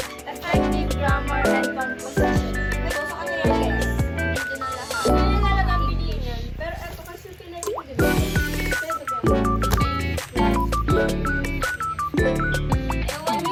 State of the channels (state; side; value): identical; both; correlation 1.00